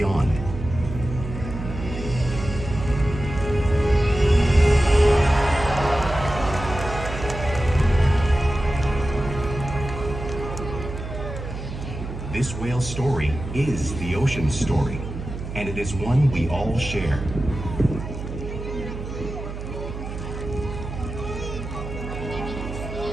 This whale's story is the ocean's story, and it is one we all share.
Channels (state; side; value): noise; right; hum, 8 dB below the sound